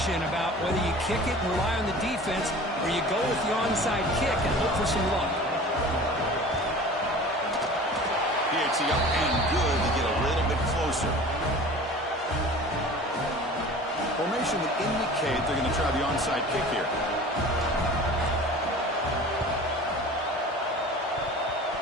about whether you kick it and rely on the defense or you go with the onside kick and hope for some luck. PAT up and good to get a little bit closer. Formation would indicate they're going to try the onside kick here.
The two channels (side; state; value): both; normal; correlation 0.41